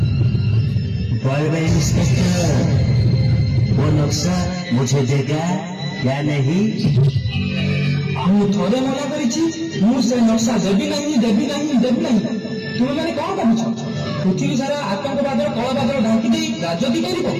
बॉय इंस्पेक्टर वो नक्शा मुझे देगा या नहीं? ମୁଁ ଥରେ ମନା କରିଛି ମୁଁ ସେ ନକ୍ସା ଦେବି ନାହିଁ ତୁମେମାନେ କଣ ଭାବୁଛ ପୃଥିବୀ ସାରା ଆତଙ୍କବାଦର କଳାବାଦର ଢାଙ୍କି ଦେଇ ରାଜନୀତି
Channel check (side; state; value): both; identical; correlation 1.00